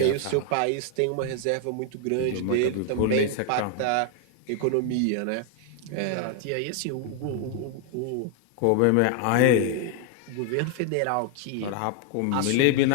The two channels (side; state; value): both; different; correlation 0.00